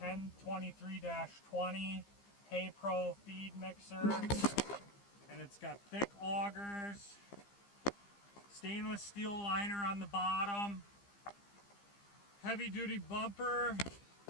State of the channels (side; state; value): right; late; 15 ms